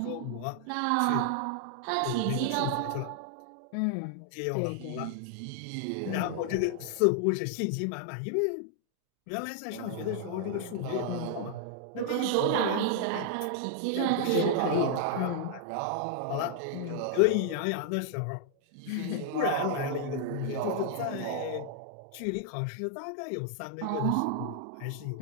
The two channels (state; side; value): different; both; correlation -0.01